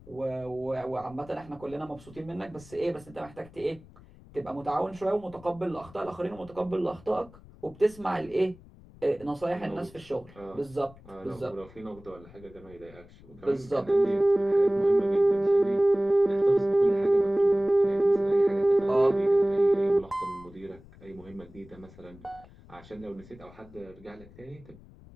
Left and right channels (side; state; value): left; noise; rumble, 22 dB below the sound